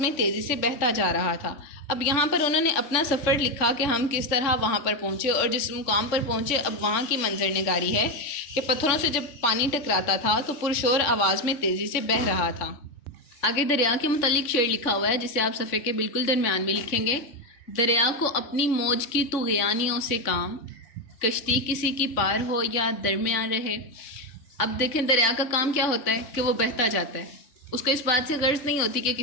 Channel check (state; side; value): late; right; 3.5 ms